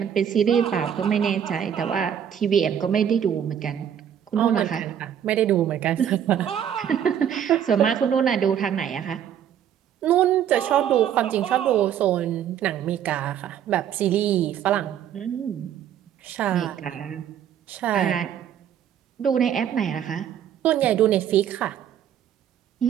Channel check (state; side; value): quieter; left; 9.4 dB